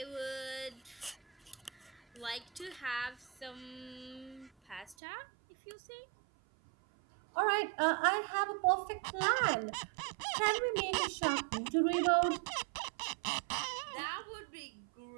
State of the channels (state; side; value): drops out; left; at 5.0 s